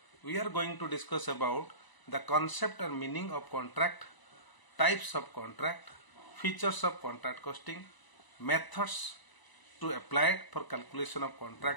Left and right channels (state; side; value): late; right; 1.0 ms